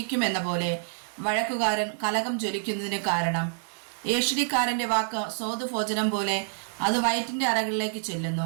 പോലെ വഴക്കുകാരൻ കലകം ജ്വലിക്കുന്നതിന് കാരണം. ഏഷണിക്കാരൻ്റെ വാക്ക് സ്വാദുഭോജനം പോലെ, അത് വയറ്റിൻ്റെ അറകളിലേക്ക്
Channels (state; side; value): silent; left; digital silence